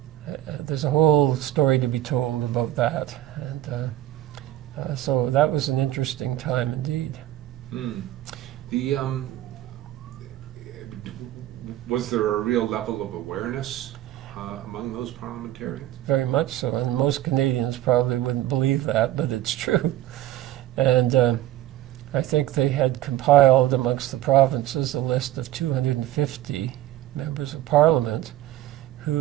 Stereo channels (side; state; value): left; quieter; 14.0 dB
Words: there's a whole story to be told about that. And so that was an interesting time indeed. Mm. Was there a real level of awareness among those parliamentarians? Very much so, and most Canadians probably wouldn't believe that, but it's true. And I think they had compiled amongst the provinces a list of 250 members of parliament